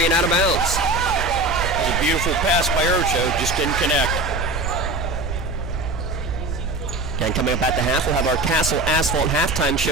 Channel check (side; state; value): right; noise; rumble, 5 dB below the sound